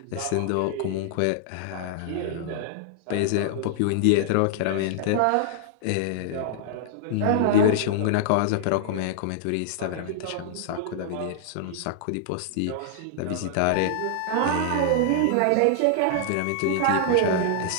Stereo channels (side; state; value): both; different; correlation -0.01